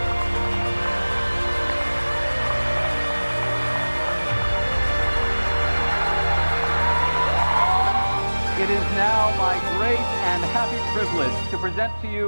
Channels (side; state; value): both; inverted; correlation -1.00